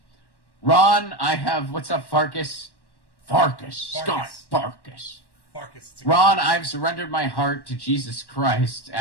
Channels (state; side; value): late; right; 1.1 ms